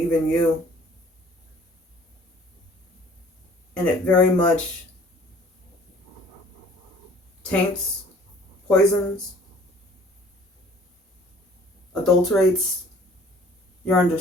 you. And it very much taints poisons, adulterates your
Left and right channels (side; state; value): both; normal; correlation 0.53